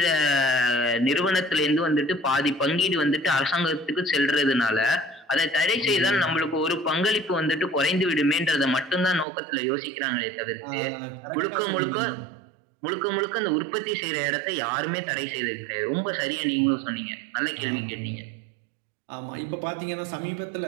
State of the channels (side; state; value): left; drops out; at 9.2 s